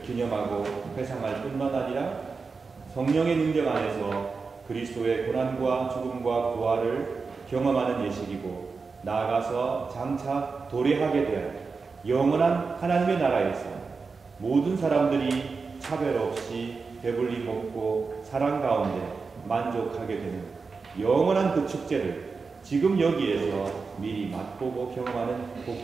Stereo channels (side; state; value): left; quieter; 4.7 dB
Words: 기념하고 회상할 뿐만 아니라 성령의 능력 안에서 그리스도의 고난과 죽음과 부활을 경험하는 예식이고 나아가서 장차 도래하게 될 영원한 하나님의 나라에서 모든 사람들이 차별 없이 배불리 먹고 사랑 가운데 만족하게 되는 영원한 그 축제를 지금 여기에서 미리 맛보고 경험하는